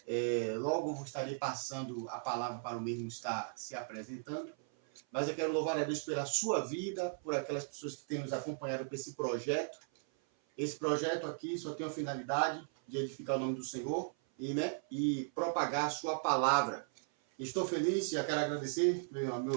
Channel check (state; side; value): silent; left; 53 dB below the other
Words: Logo estarei passando a palavra para o mesmo estar se apresentando, mas eu quero louvar a Deus pela sua vida, por aquelas pessoas que têm nos acompanhado com esse projeto. Esse projeto aqui só tem a finalidade de edificar o nome do Senhor e propagar a sua palavra. Estou feliz e quero agradecer ao